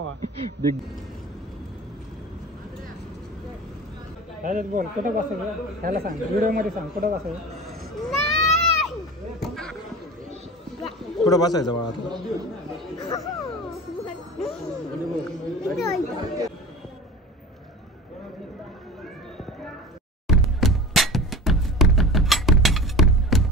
बिग. बोल कुठं बसायचं त्याला सांग, व्हिडिओ मध्ये सांग कुठं बसायचं. कुठं बसायचं बाळा आता?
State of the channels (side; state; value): both; normal; correlation 0.36